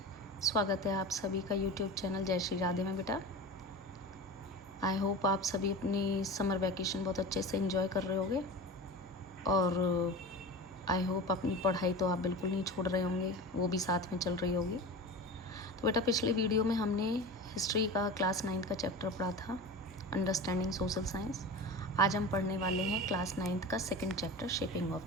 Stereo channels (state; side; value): normal; both; correlation 0.31